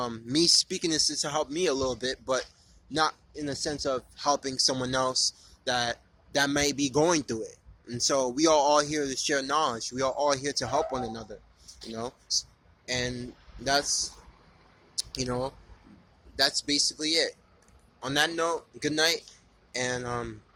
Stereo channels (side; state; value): both; identical; correlation 1.00